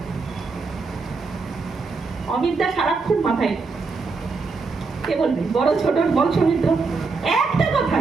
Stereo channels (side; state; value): left; quieter; 4.3 dB